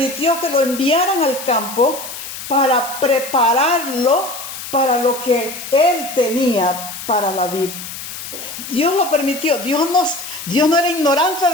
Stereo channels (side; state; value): left; noise; hiss, 10 dB below the sound